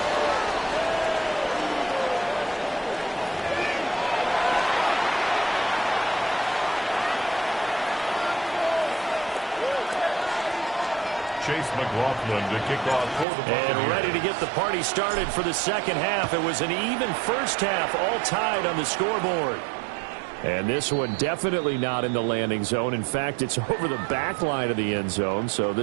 Chase McLaughlin to kick off for the Buccaneers. And ready to get the party started for the second half. It was an even first half, all tied on the scoreboard. And this one definitely not in the landing zone. In fact, it's over the back line of the end zone. So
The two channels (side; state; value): left; drops out; at 13.2 s